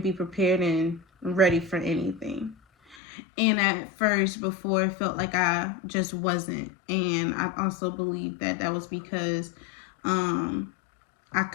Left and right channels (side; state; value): right; drops out; at 3.0 s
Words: be prepared and ready for anything. And at first, before, it felt like I just wasn't. And I also believe that that was because I